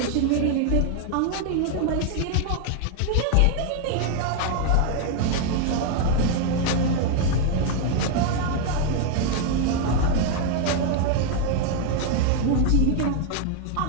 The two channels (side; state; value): both; different; correlation 0.00